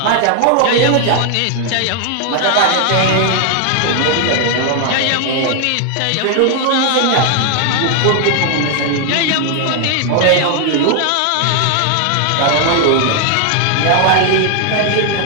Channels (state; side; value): different; both; correlation 0.00